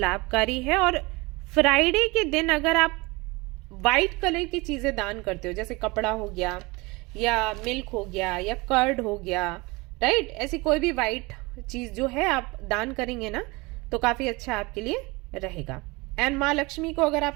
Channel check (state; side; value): quieter; left; 24.5 dB